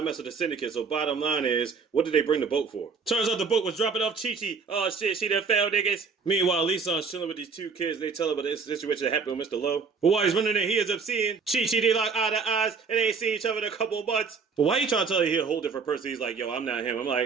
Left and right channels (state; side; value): quieter; left; 5.2 dB